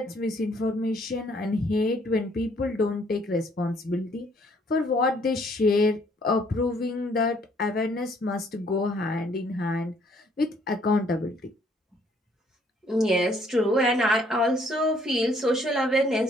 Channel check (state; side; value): normal; both; correlation 0.64